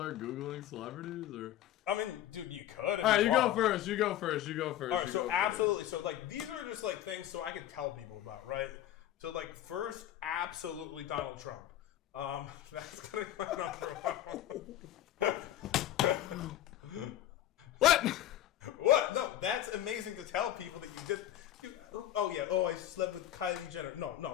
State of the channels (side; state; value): right; quieter; 12.6 dB